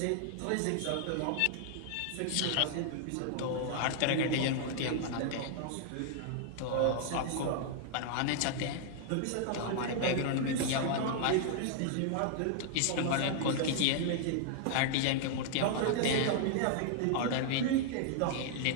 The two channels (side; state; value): both; different; correlation -0.01